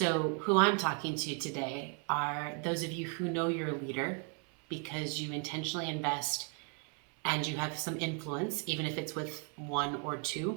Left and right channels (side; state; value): left; quieter; 35.7 dB